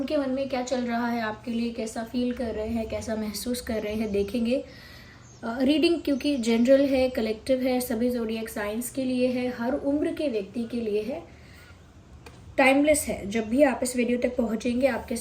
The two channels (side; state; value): both; identical; correlation 1.00